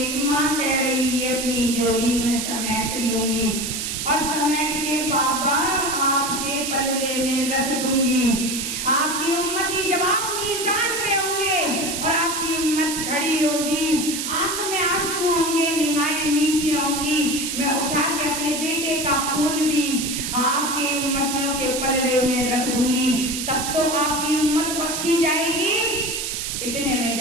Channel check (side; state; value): right; noise; hiss, 3 dB below the sound